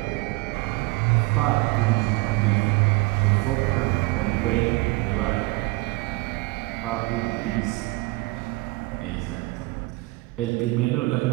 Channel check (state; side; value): quieter; left; 22.8 dB